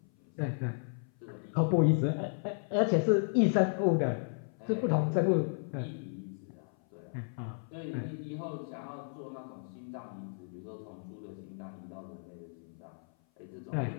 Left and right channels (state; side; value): silent; right; 55 dB below the other